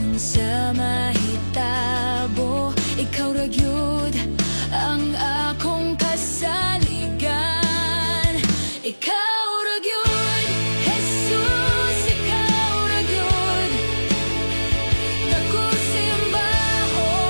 mahitabo, ikaw ra gyud ang akong kasaligan. Ikaw ra gyud, Jesus, ikaw ra gyud. Dako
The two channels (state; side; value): inverted; both; correlation -1.00